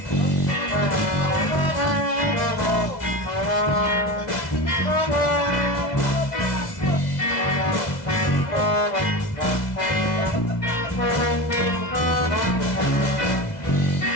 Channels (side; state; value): right; late; 2.0 ms